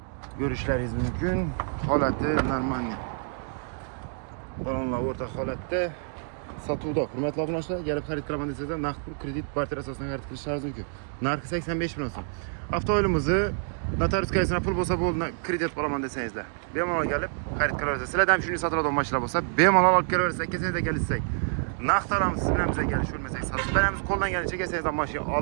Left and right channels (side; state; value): left; silent; 60 dB below the other